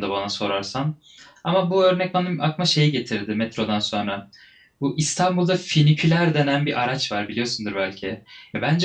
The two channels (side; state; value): both; identical; correlation 1.00